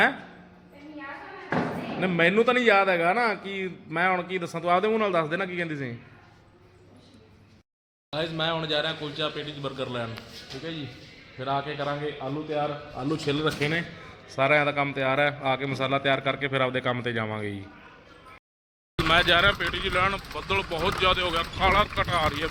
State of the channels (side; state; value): both; identical; correlation 1.00